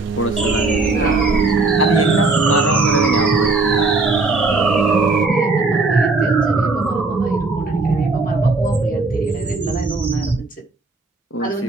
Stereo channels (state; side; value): quieter; left; 3.6 dB